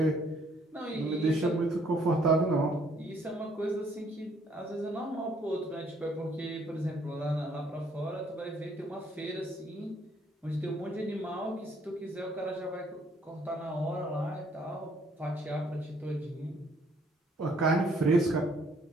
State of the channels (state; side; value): normal; both; correlation 0.65